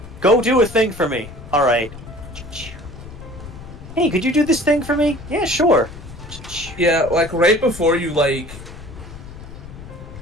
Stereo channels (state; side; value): noise; left; rumble, 14 dB below the sound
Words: go do a thing for me. Alright. Hey, could you do this thing for me? Yeah, sure. Yeah, like right before you like.